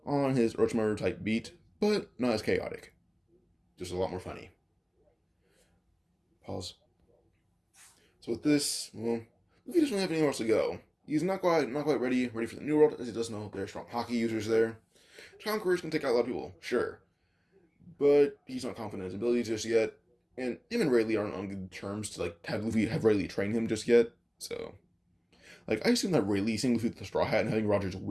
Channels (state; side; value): identical; both; correlation 1.00